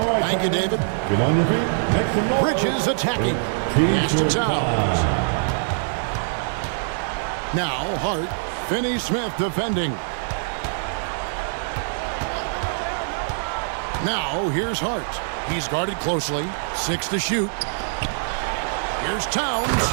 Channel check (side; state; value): left; silent; 63 dB below the other